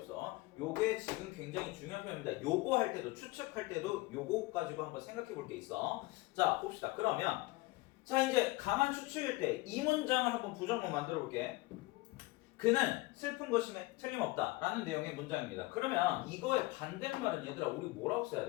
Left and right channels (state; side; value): quieter; right; 21.3 dB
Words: 요게 지금 굉장히 중요한 표현입니다. 요거 할 때도, 추측할 때도 요거 가지고 한번 생각해 볼 게 있어. 자, 봅시다. 그러면 자, 이제 강한 추측일 때 이 문장을 한번 부정문 만들어 볼게. 그는 슬픈 것임에 틀림없다 라는 내용의 문장입니다. 그러면 이거의 반대말은 얘들아, 우리 뭐라고 써야